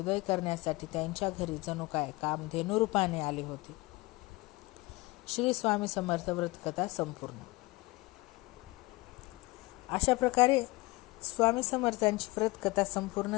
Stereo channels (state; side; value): quieter; right; 22.2 dB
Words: करण्यासाठी त्यांच्या घरी जणू काय कामधेनू रूपाने आले होते. श्री स्वामी समर्थ व्रतकथा संपूर्ण. अशा प्रकारे स्वामी समर्थांची व्रतकथा